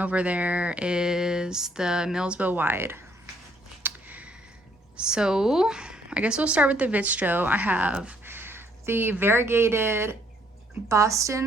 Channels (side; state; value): both; normal; correlation 0.67